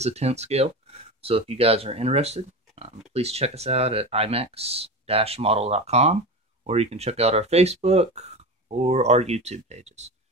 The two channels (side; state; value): both; normal; correlation 0.26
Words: a 10th scale. So if you guys are interested, please check us out at imex-model.com, or you can check out our Facebook or our YouTube pages.